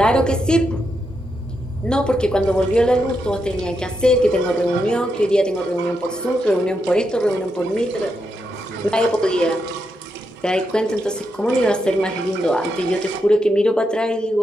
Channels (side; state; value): both; normal; correlation 0.83